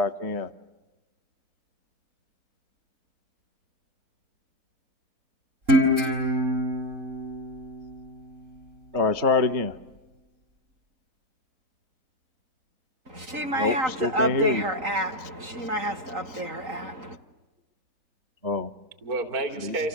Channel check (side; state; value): left; late; 3.9 ms